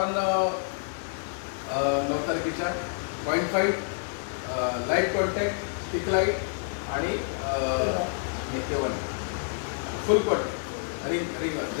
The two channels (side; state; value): right; silent; digital silence